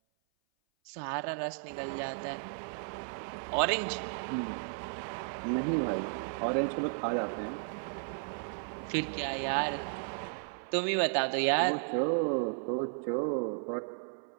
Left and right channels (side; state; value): left; silent; 55 dB below the other